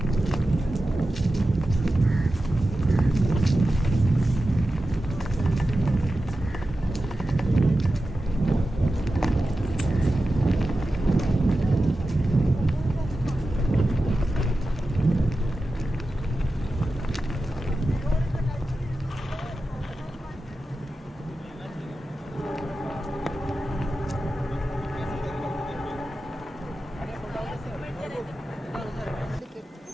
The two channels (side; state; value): both; normal; correlation 0.93